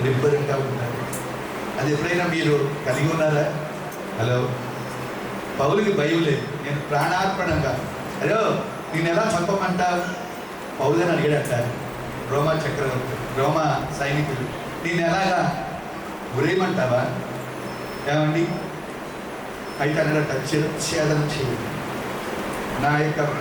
నిబ్బరంగా ఉన్నారు. అది ఎప్పుడైనా మీరు కలిగి ఉన్నారా? హలో పౌలుకి భయం లేదు. నేను ప్రాణార్పణంగా, హలో నేను ఎలా చంపమంటావు పౌలని అడిగాడట రోమా సైనికులు. నేను ఎలాగా గురేయమంటావా ఏమండి? అయితే అన్నట చిరఛేదన చేయండి, నా యొక్క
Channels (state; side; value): identical; both; correlation 1.00